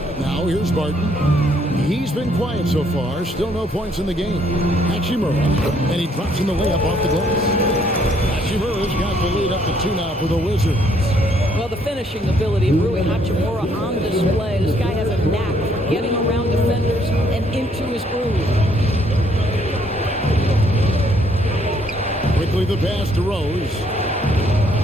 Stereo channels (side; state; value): both; normal; correlation 0.67